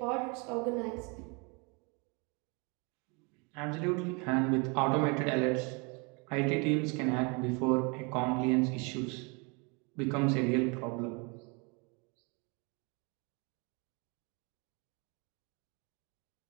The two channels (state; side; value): quieter; left; 31.5 dB